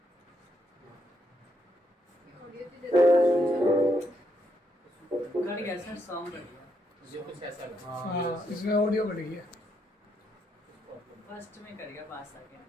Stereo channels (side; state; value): both; normal; correlation 0.77